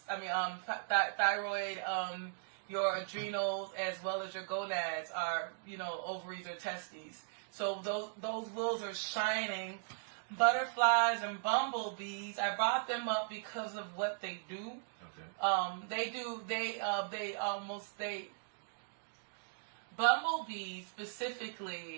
your adrenals, as well as your gonads are, ovaries or testes. So those wheels are shining. Butterflies and bumblebees, I brought them up because of what they do. Okay. Bumblebees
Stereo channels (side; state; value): left; silent; digital silence